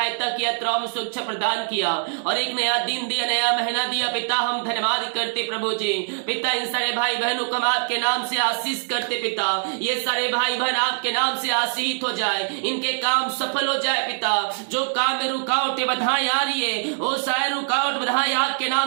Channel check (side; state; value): left; silent; digital silence